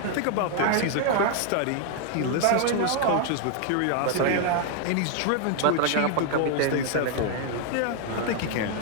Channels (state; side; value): different; both; correlation 0.00